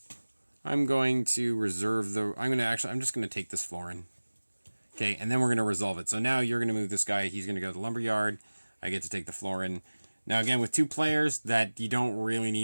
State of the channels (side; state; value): both; inverted; correlation -1.00